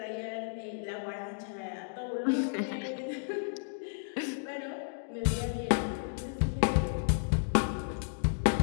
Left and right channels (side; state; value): right; silent; digital silence